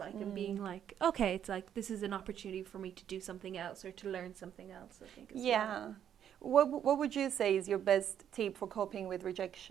and being like, okay, it's like this is an opportunity for me to do something else or to learn something else, I think as well. What would you say is your best tip for coping with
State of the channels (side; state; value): left; quieter; 9.5 dB